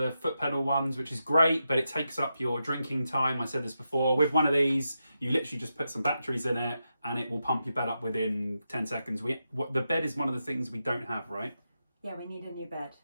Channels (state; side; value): inverted; both; correlation -0.87